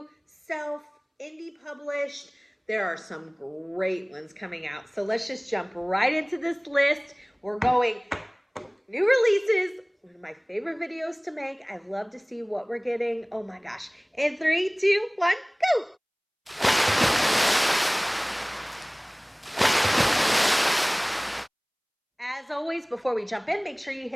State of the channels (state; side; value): identical; both; correlation 1.00